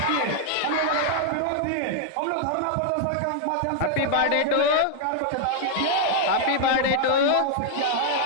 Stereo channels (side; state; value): both; different; correlation -0.01